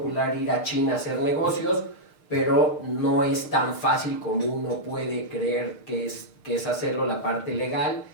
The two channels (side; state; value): right; late; 6.6 ms